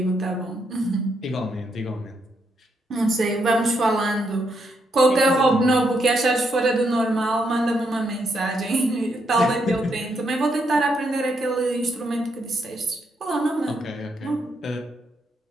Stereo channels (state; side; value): normal; both; correlation 0.78